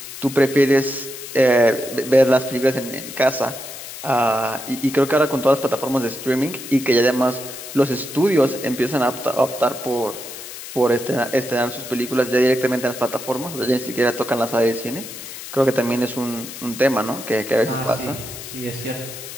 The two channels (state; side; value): noise; left; hiss, 11 dB below the sound